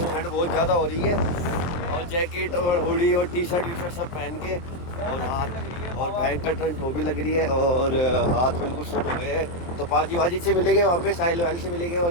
ठंड बहुत ज़्यादा हो रही है, और जैकेट और हुडी और टी शर्ट सब पहन के, और हाथ और भयंकर ठंड वो भी लग रही है, और हाथ बिल्कुल सुन हो गए हैं। तो पाजी से मिलेंगे वहाँ पे, साहिल वाली से मिलेंगे, और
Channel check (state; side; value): late; right; 23 ms